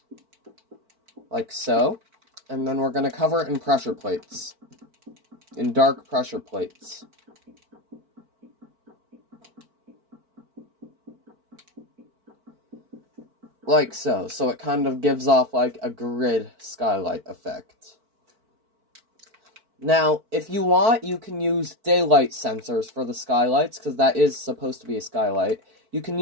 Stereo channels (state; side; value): late; left; 4.5 ms